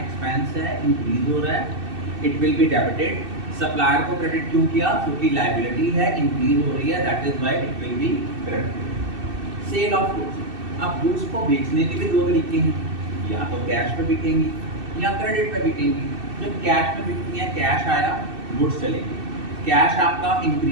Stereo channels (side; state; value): left; late; 2.6 ms